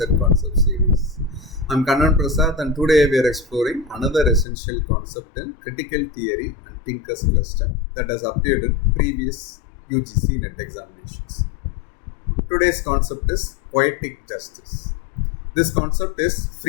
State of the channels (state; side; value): drops out; right; at 4.5 s